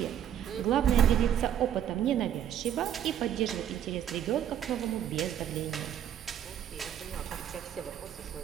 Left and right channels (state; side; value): quieter; left; 9.9 dB